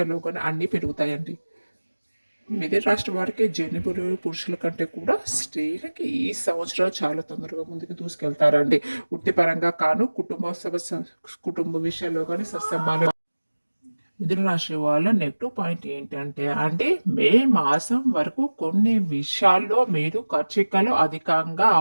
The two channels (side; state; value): both; inverted; correlation -1.00